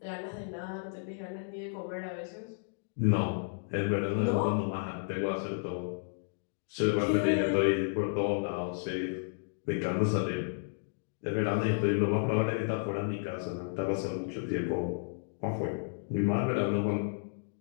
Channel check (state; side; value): silent; right; digital silence